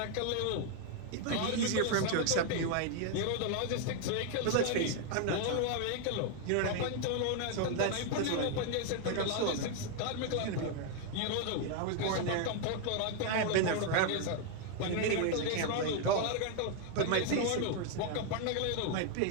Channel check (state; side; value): different; both; correlation 0.00